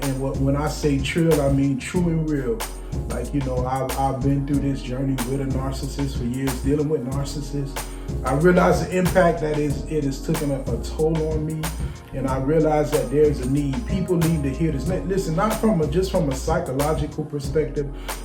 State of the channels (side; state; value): both; identical; correlation 1.00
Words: I say trill, I mean true and real. I've been through this journey with a narcissist for years, dealing with narcissists. I realize the impact that it has taken a toll on me, and I realize that there's a need. People need to hear this. Listen, not just from a psychological perspective,